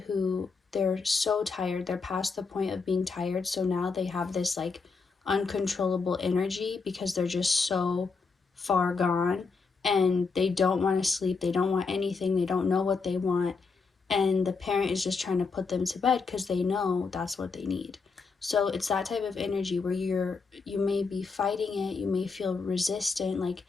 who they're so tired, they're past the point of being tired, so now they have this like uncontrollable energy because they're just so far gone and they don't want to sleep, they don't want anything, they don't know what they want, and the parent is just trying to put them to bed because they know that's what they need. So it's that type of energy where you may be fighting it, you may feel resistant, like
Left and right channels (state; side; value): quieter; right; 4.7 dB